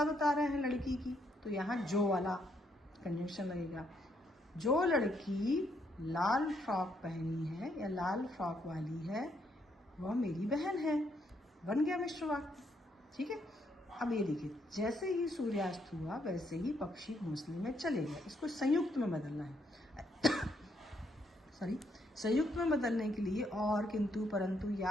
बता रहे हैं लड़की की, तो यहाँ जो वाला कंजंक्शन लगेगा। जो लड़की लाल फ्रॉक पहनी है या लाल फ्रॉक वाली है वह मेरी बहन है, बन गया मिश्र वाक्य। ठीक है, अब ये देखिए, जैसे ही सूर्यास्त हुआ वैसे ही पक्षी घोंसले में चले गए। इसको संयुक्त में बदलना है। सॉरी, संयुक्त में बदलने के लिए और, किंतु, परंतु या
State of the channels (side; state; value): both; normal; correlation 0.74